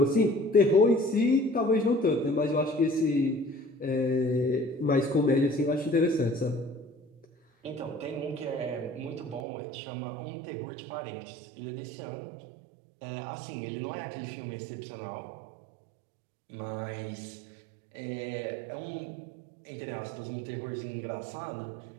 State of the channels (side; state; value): left; drops out; at 9.4 s